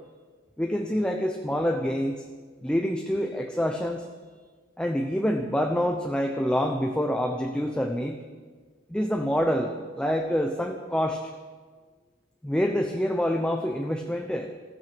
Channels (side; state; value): both; normal; correlation 0.86